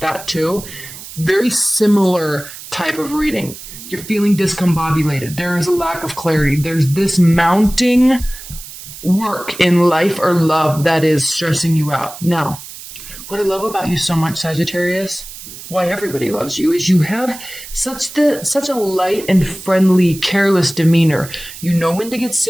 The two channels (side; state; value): right; noise; hiss, 14 dB below the sound